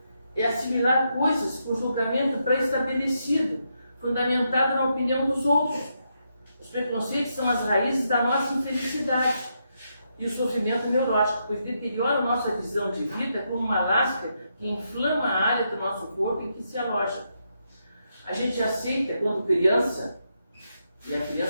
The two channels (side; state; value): both; inverted; correlation -0.81